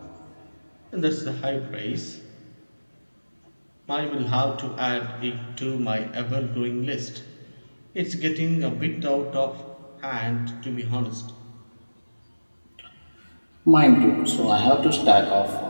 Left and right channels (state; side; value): inverted; both; correlation -1.00